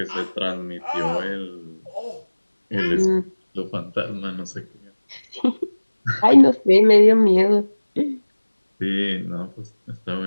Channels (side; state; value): both; inverted; correlation -1.00